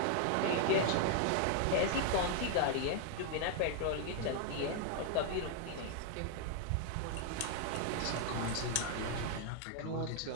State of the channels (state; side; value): different; both; correlation 0.00